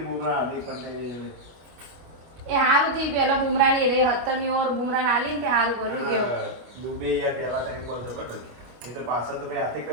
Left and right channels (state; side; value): late; left; 25 ms